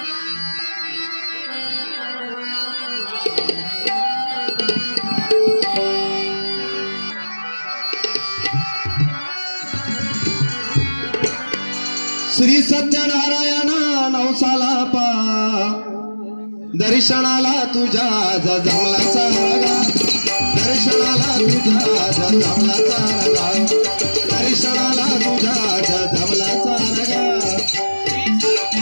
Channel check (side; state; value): both; inverted; correlation -1.00